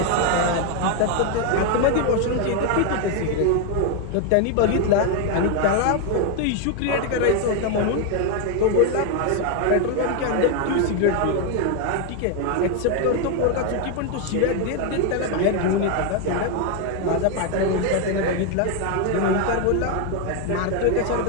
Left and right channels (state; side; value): different; both; correlation 0.01